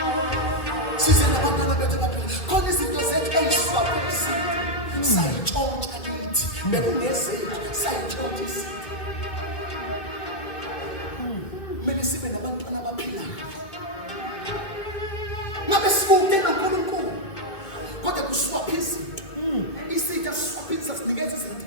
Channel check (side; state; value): right; late; 2.0 ms